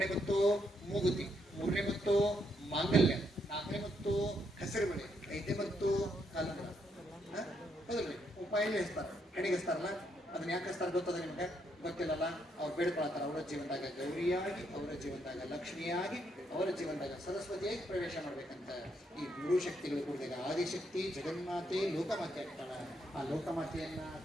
ಮುತ್ತು ಮೂಗುತಿ, 3ನೇ ಮುತ್ತು ಮಾಂಗಲ್ಯ, 4ನೇ ಮುತ್ತು ಹೆಸರು ಬಳೆ, 5ನೇ ಮುತ್ತು ಕಾಲಂಗ್ರ. ಹೌದಲ್ರಿ ಉಪಾಯಲ್ಲಿ ಹಚ್ತಾರೆ, ಹೆಣಿಗೆ ಹಚ್ತಾರಲ್ಲ. ಅದನ್ನ ಯಾಕೆ ಹಚ್ತಾರೆ ಗೊತ್ತದ ನಿಮ್ಗೆ? ಗೊತ್ತಿಲ್ಲಲ್ಲ. ಅವ್ರು ಬೇಡ್ಕೊಳ್ತಾರೆ ಅವರ ಜೀವನದಾಗ ಗೌರಿಯಾಗಿ, ಅವರ ಜೀವನದಾಗ ಲಕ್ಷ್ಮಿಯಾಗಿ, ಅವರ ಜೀವನದಾಗ ಸರಸ್ವತಿಯಾಗಿ ಪ್ರವೇಶ ಮಾಡ್ಬೇಕಂತ. ಈ 3 ಶಕ್ತಿಗಳು ಕೂಡಿದಾಗ ಆದಿಶಕ್ತಿ ಜಗನ್ಮಾತೆ ಲೋಕಮಾತೆ ಆಗ್ತಾಳ. ಆ ಲೋಕಮಾತೆಯನ್ನ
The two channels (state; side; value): normal; both; correlation 0.76